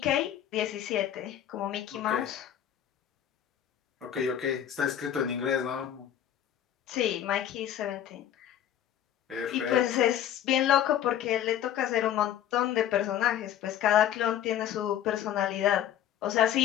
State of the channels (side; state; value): right; quieter; 10.6 dB